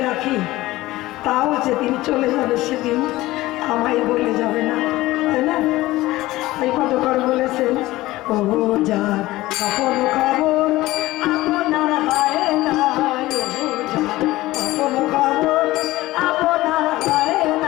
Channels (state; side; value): quieter; right; 17.8 dB